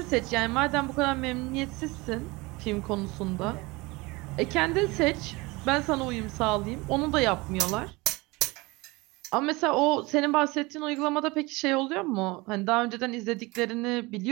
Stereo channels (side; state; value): left; quieter; 23.6 dB